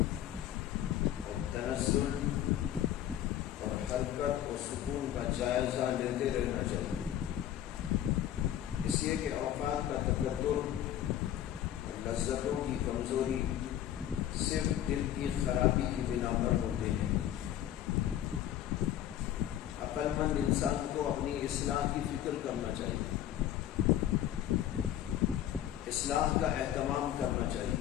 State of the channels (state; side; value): quieter; right; 11.6 dB